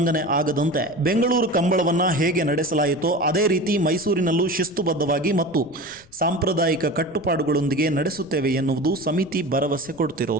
ಆಗದಂತೆ ಬೆಂಗಳೂರು ಕಂಬಳವನ್ನು ಹೇಗೆ ನಡೆಸಲಾಯಿತೋ ಅದೇ ರೀತಿ ಮೈಸೂರಿನಲ್ಲೂ ಶಿಸ್ತುಬದ್ಧವಾಗಿ ಮತ್ತು ಸಾಂಪ್ರದಾಯಿಕ ಕಟ್ಟುಪಾಡುಗಳೊಂದಿಗೆ ನಡೆಸುತ್ತೇವೆ ಎನ್ನುವುದು ಸಮಿತಿ ಭರವಸೆ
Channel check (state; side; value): noise; left; rumble, 28 dB below the sound